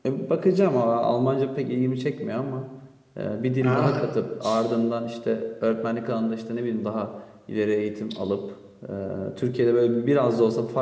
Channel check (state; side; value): identical; both; correlation 1.00